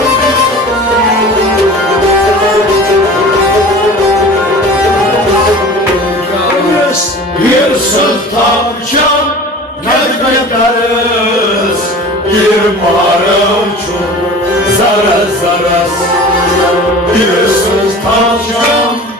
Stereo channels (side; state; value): both; normal; correlation 0.40